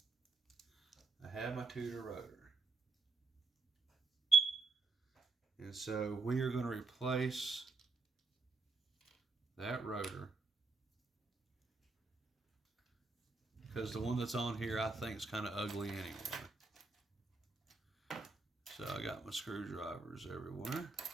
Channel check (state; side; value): quieter; left; 3.9 dB